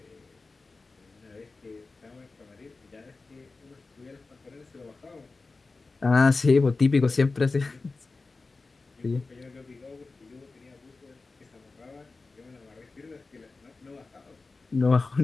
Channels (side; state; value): right; quieter; 3.8 dB